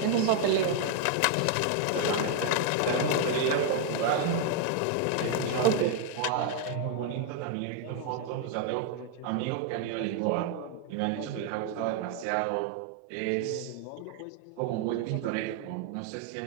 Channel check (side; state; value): both; different; correlation 0.00